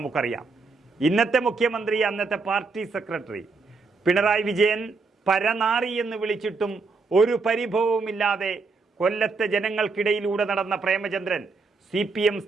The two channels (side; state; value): left; quieter; 4.2 dB